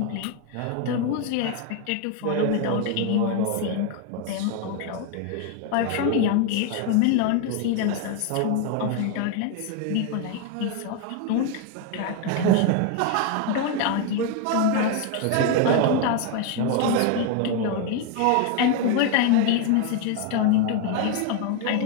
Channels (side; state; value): both; different; correlation 0.01